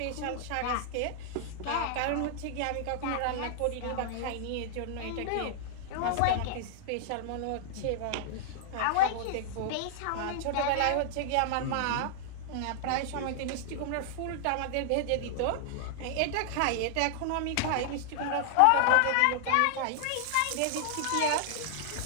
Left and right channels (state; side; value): different; both; correlation -0.01